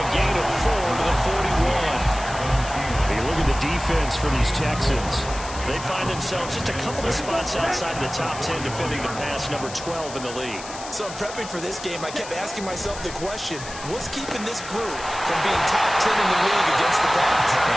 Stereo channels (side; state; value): left; noise; hiss, 13 dB below the sound